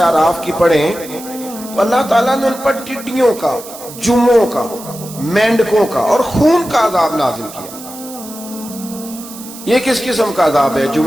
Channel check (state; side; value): noise; right; hiss, 15 dB below the sound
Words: اعراف کی پڑھیں تو اللہ تعالیٰ نے ان پر ٹڈیوں کا، جموں کا، مینڈکوں کا اور خون کا عذاب نازل کیا۔ یہ کس قسم کا عذاب ہے؟